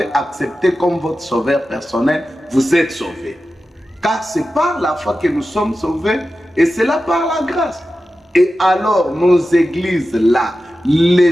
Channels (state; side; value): normal; both; correlation 0.93